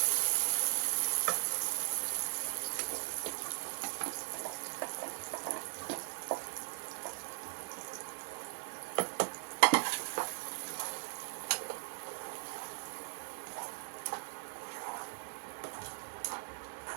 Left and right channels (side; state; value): left; silent; 52 dB below the other